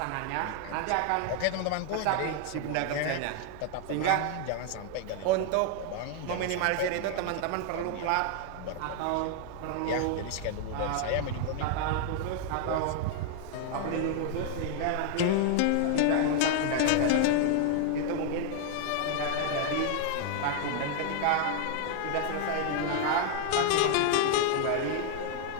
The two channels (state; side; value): different; both; correlation 0.00